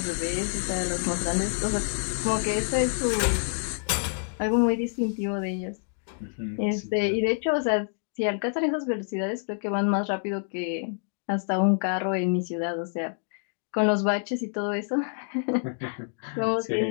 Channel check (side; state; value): right; silent; digital silence